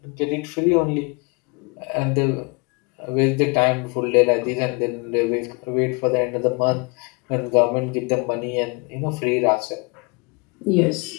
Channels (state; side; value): quieter; right; 30.8 dB